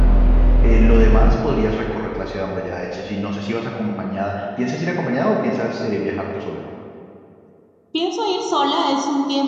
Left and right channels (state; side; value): identical; both; correlation 1.00